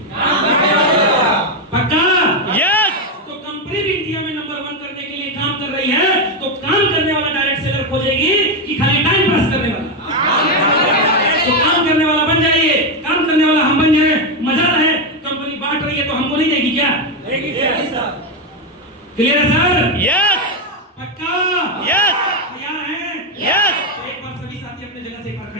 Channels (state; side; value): normal; both; correlation 0.07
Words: पक्का? यस। तो कंपनी भी इंडिया में नंबर 1 करने के लिए काम कर रही है, तो काम करने वाला डायरेक्ट सेलर खोजेगी कि खाली टाइम पास करने वाला? तो काम करने वाला बन जाइए, काम करने वाला हम बन जाए, मजा रहे। कंपनी बांट रही है तो हमको नहीं देगी क्या? देगी सर। क्लियर है सर? यस। पक्का? यस। तैयार हैं? यस। एक बार सभी साथी अपने जगह से एक बार